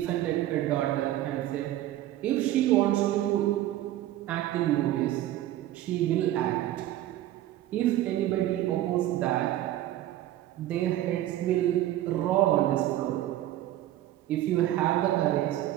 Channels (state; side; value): quieter; left; 13.9 dB